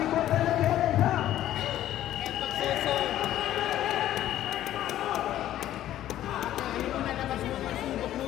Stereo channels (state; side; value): quieter; right; 12.8 dB